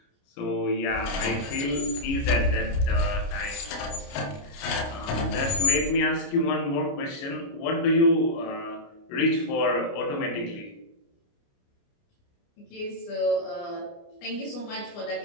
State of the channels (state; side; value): late; right; 29 ms